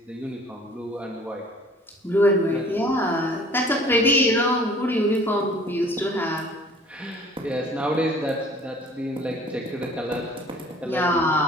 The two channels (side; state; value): both; normal; correlation 0.52